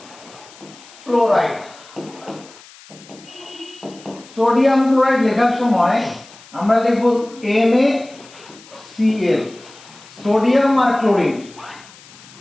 ক্লোরাইড, সোডিয়াম ক্লোরাইড লেখার সময় আমরা লিখব NaCl, সোডিয়াম আর ক্লোরিন।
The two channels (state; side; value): noise; left; hiss, 22 dB below the sound